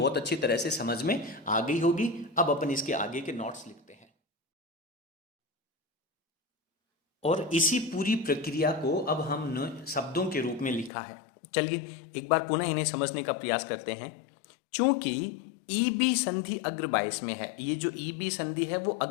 अच्छी तरह से समझ में आ गई होगी। अब अपन इसके आगे के नोट्स लिखते हैं और इसी पूरी प्रक्रिया को अब हमने शब्दों के रूप में लिखा है। चलिए एक बार पुनः इन्हें समझने का प्रयास करते हैं। चूंकि ईबी संधि अग्र 22 में है, ये जो ईबी संधि है वो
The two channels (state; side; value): drops out; right; at 10.9 s